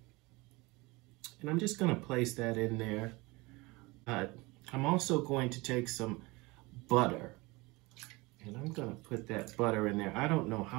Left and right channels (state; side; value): quieter; left; 23.8 dB